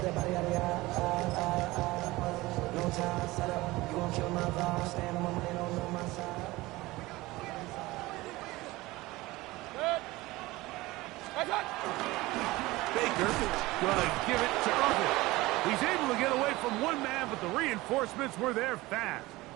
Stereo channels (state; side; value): quieter; left; 19.8 dB